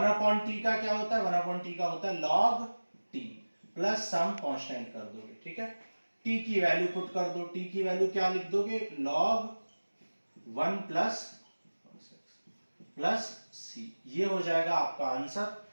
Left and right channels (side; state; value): both; inverted; correlation -1.00